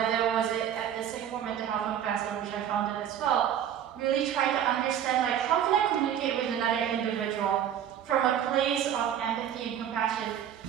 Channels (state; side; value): quieter; left; 9.9 dB